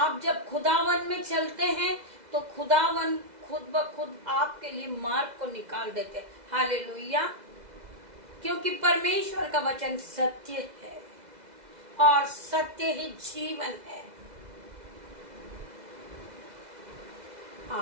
जब खुदावन में चलते हैं तो खुदावन खुद ब खुद आपके लिए मार्ग को निकाल देते हैं। हालेलुया। क्योंकि परमेश्वर का वचन सत्य है और सत्य ही जीवन है।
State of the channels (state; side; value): late; left; 2.0 ms